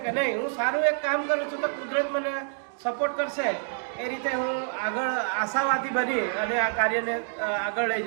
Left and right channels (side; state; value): left; silent; digital silence